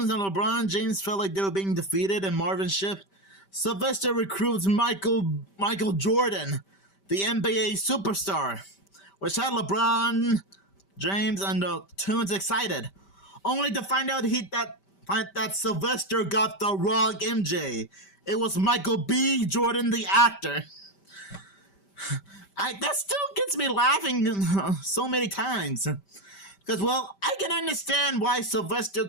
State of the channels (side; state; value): right; late; 5.1 ms